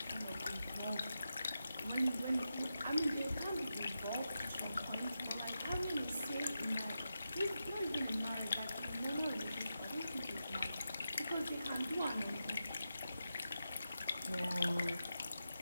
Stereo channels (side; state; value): both; inverted; correlation -0.89